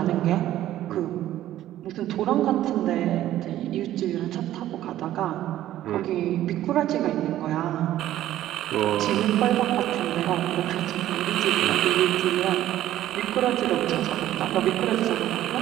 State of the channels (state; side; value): quieter; left; 13.3 dB